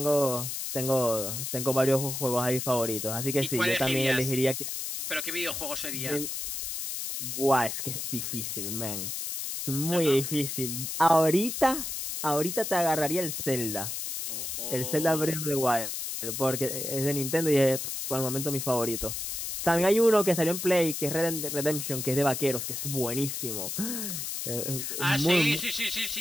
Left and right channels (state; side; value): noise; left; hiss, 4 dB below the sound